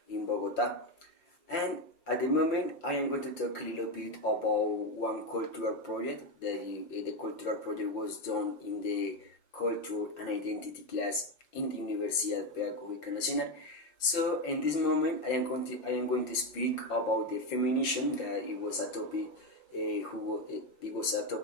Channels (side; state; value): right; late; 5.8 ms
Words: in Bogota. And at the moment, I am going to talk a little bit about one cultural project. The cultural project was done in the Culture and Identity class in the Universidad Pedagógica Nacional. So in this moment, I am going to speak about the feminism. That it was a topic. It was a